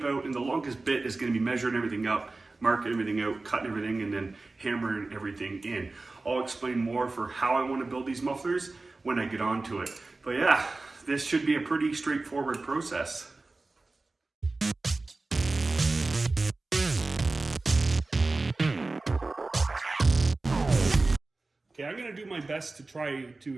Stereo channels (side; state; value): left; quieter; 3.4 dB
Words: out, and the longest bit is going to be measuring everything up, marking everything out, cutting everything, and then hammering everything in. I'll explain more for how I want to build these mufflers when I get onto it. But yeah, this should be a pretty straightforward process. Okay, I'm going to do my best to try